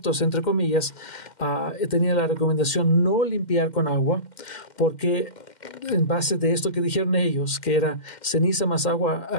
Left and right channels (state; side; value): late; right; 2.1 ms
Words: entre comillas, tenían la recomendación no limpiar con agua, porque en base de esto que dijeron ellos, que era ceniza más agua